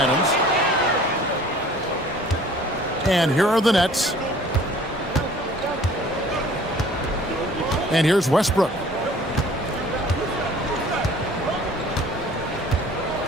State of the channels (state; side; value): normal; both; correlation 0.50